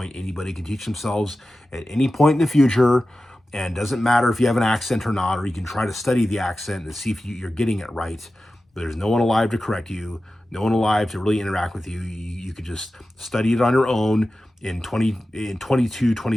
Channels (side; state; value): both; normal; correlation 0.94